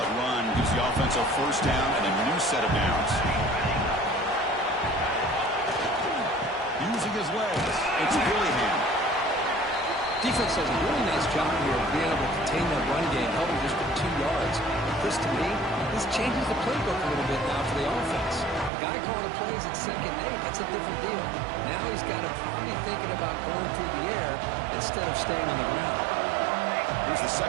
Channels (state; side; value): drops out; left; at 18.7 s